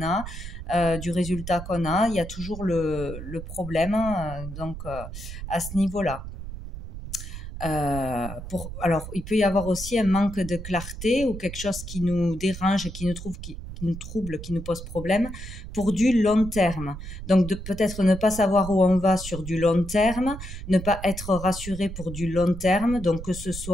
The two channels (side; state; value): right; noise; rumble, 10 dB below the sound